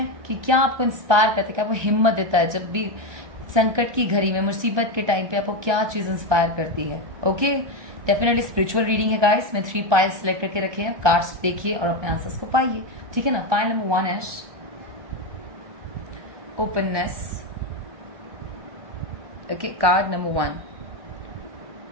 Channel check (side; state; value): left; late; 1.2 ms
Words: कि क्या आपको इंस्पायर करता है, क्या आपको हिम्मत देता है जब भी संकट की घड़ी में, मुसीबत के टाइम पे आपको क्या चीज इंस्पायर करती है। ओके, डेफिनेटली स्पिरिचुअल रीडिंग है गाइस। मैं 3 पाइल्स सेलेक्ट करके रखे हैं, कार्ड्स देखिए और अपने आंसर्स को पाइए। ठीक है ना? Pile number 1 is openness. Okay, card number 1,